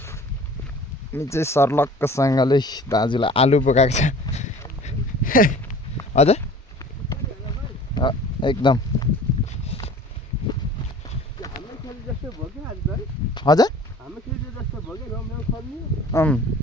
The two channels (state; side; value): normal; both; correlation 0.46